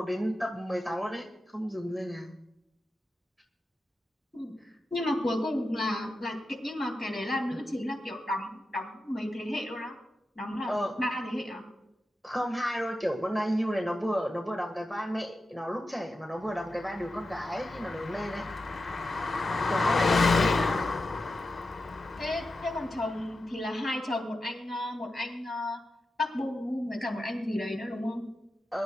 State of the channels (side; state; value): both; normal; correlation 0.91